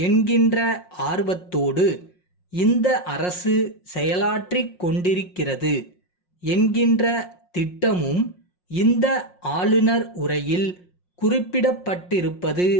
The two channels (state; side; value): late; right; 5.6 ms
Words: என்கின்ற ஆர்வத்தோடு இந்த அரசு செயலாற்றிக் கொண்டிருக்கிறது என்கின்ற திட்டமும் இந்த ஆளுநர் உரையில் குறிப்பிடப்பட்டிருப்பது